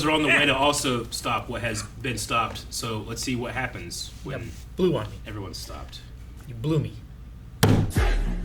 are on the way to also stop what has been stopped. So let's see what happens when Blew on me. everyone's stopped. You blew me.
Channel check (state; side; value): identical; both; correlation 1.00